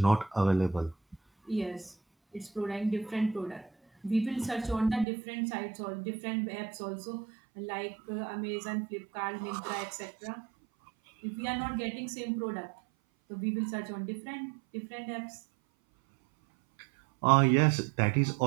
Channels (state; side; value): drops out; left; at 5.1 s